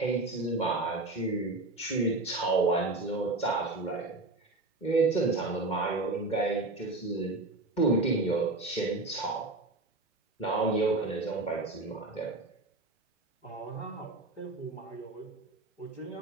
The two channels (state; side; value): quieter; left; 3.1 dB